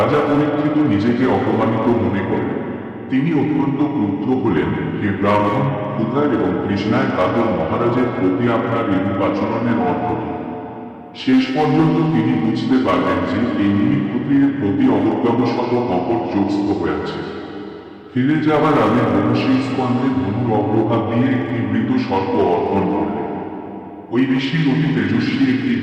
পরীক্ষিত নিজেকে অপমানিত মনে করেন। তিনি অত্যন্ত ক্রুদ্ধ হলেন, হে ব্রাহ্মণ, ক্ষুধার এবং তৃষ্ণায় কাতর মহারাজের প্রতি আপনার এরূপ আচরণের অর্থ কি? শেষ পর্যন্ত তিনি বুঝতে পারলেন যে এই মুনি ক্ষত্রিয়ের প্রতি অবজ্ঞাবশত কপট যোগস্থ হয়েছে। ফিরে যাওয়ার আগে মহর্ষি স্কন্ধে ধনুর অগ্রভাগ দিয়ে একটি মৃত সর্প অর্পণ করলেন। ওই ঋষির অতি তেজস্বী একটি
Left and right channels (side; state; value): both; identical; correlation 1.00